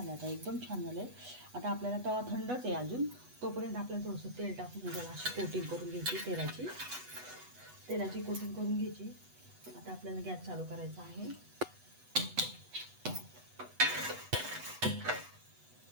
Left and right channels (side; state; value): left; late; 8.1 ms